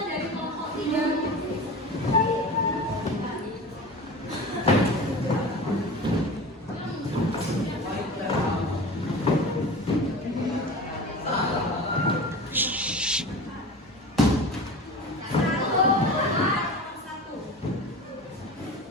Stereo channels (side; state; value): both; normal; correlation 0.34